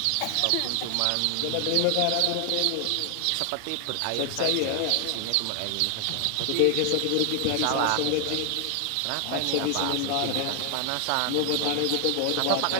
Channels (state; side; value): different; both; correlation 0.00